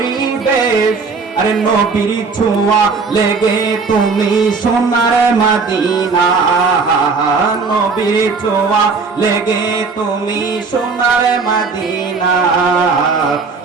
আরে নবীর ছোঁয়া লেগে তুমি সোনার মদিনা, নবীর ছোঁয়া লেগে তুমি সোনার মদিনা।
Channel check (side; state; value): left; quieter; 4.6 dB